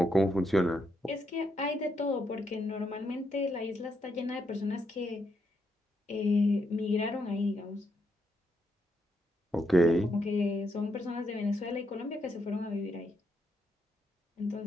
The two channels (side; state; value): both; normal; correlation 0.79